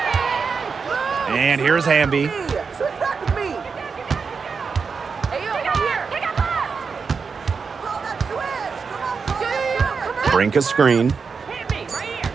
And here's Hamby. Brink a screen.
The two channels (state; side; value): quieter; left; 5.4 dB